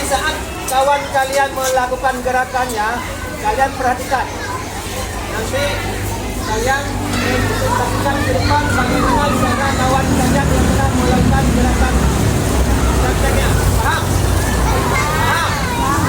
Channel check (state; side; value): identical; both; correlation 1.00